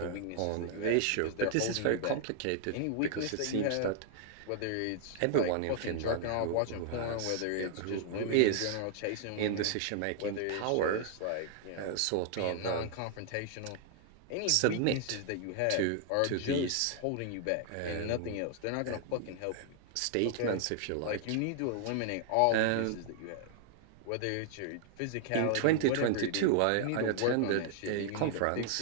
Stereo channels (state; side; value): different; both; correlation 0.00